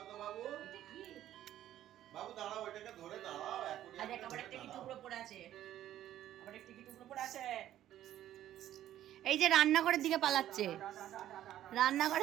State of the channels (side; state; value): left; quieter; 12.4 dB